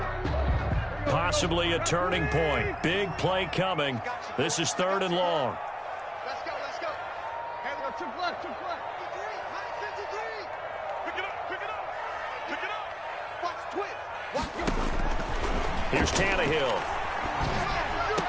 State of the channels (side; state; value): both; identical; correlation 1.00